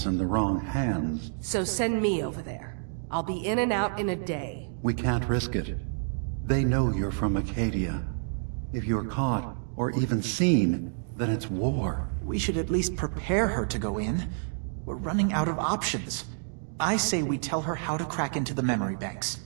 in the wrong hands... So send me over there. I'll be in and out in a day. We can't risk it. They know you're from Acadia. If you're caught, or even seen, then it's war. We should at least prepare her to go in. We're running out of options. I say we tell her how to crack into the memory banks.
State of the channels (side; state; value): left; silent; digital silence